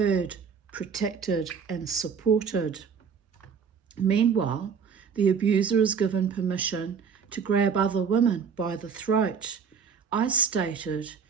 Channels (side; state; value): left; quieter; 6.4 dB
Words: protected and supported. Meanwhile, the abuser is given permission to grab other women by the throat. I stated